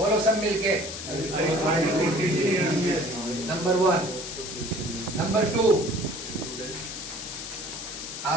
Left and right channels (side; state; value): left; noise; hiss, 8 dB below the sound